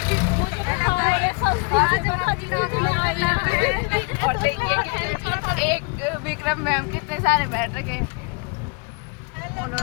और देखिए एक विक्रम मैम कितने सारे बैठ रखे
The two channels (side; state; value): right; quieter; 32.8 dB